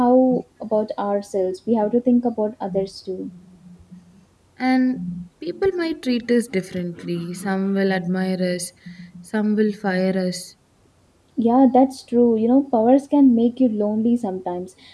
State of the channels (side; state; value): both; identical; correlation 1.00